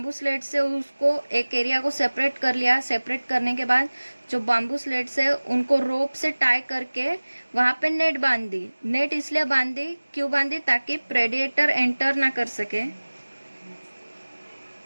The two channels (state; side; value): inverted; both; correlation -1.00